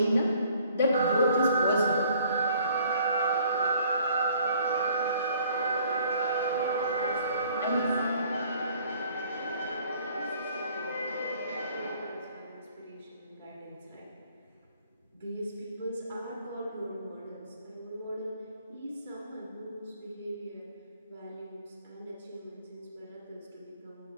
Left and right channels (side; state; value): both; inverted; correlation -0.59